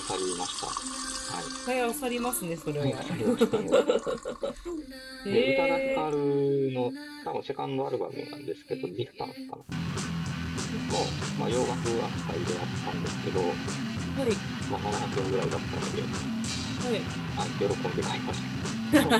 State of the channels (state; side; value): identical; both; correlation 1.00